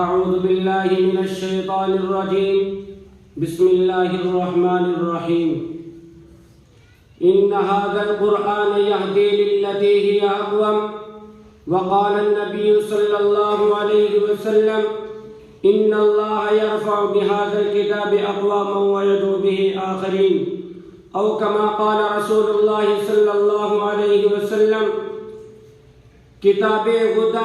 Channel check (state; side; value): identical; both; correlation 1.00